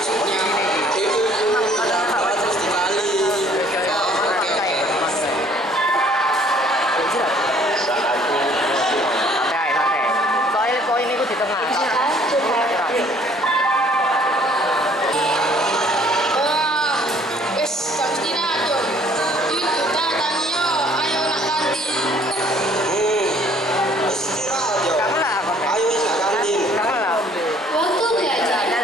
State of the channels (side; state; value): both; normal; correlation 0.58